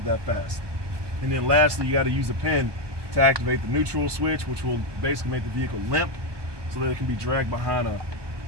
that fast. And then lastly, you got to use a pin to activate the neutral switch, which will basically make the vehicle limp so that it can be dragged behind a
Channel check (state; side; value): late; left; 1.2 ms